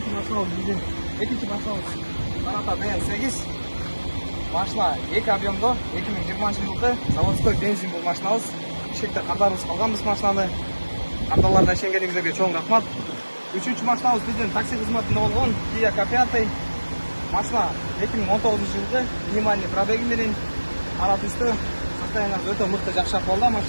машинабыз биздин Саната ДМ8. Машина 2 объемдо 2020 жылы заводской бензин бул машинабыз. Бишкекте картарыбыз калганбыз машинаны. Карталарда ишенгениңиздерге чоң рахмат. Үчүнчү машинабыз биздин такси кызматында болгон Kia K5. Машина 2019 жылы минимальный пробеги менен ара түстө состояниясы өтө мыкты, жакшы акыбалда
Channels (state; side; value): inverted; both; correlation -1.00